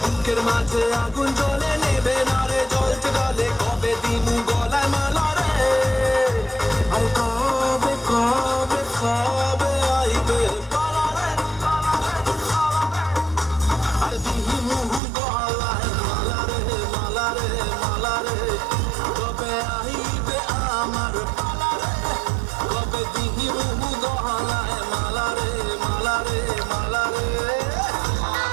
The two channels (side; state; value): left; drops out; at 15.0 s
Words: বুকের মাঝে আগুন জ্বলে নেবে না রে, জ্বলতে গলে কবে দিমু গলায় মালা রে। আর কবে কবে কবে আইবে পালারে, আর দিহি মুহু গলায় মালারে মালারে মালারে। কবে আইবে আমার পালারে, কবে দিহি মুহু গলায় মালারে মালারে মালারে।